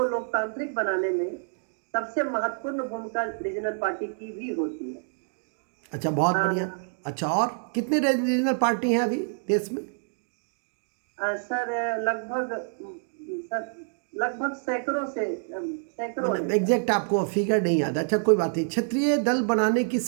लोकतांत्रिक बनाने में सबसे महत्वपूर्ण भूमिका रीजनल पार्टी की भी होती है। अच्छा, बहुत अ, बढ़िया। अच्छा, और कितने रीजनल पार्टी हैं अभी देश में? सर, लगभग सैकड़ों मतलब है सर। एग्जैक्ट आपको फिगर नहीं याद? अच्छा, कोई बात नहीं। क्षेत्रीय दल बनाने की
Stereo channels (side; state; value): left; silent; 60 dB below the other